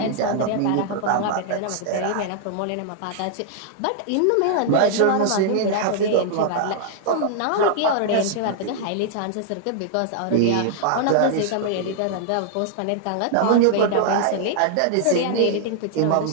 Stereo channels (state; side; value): different; both; correlation -0.01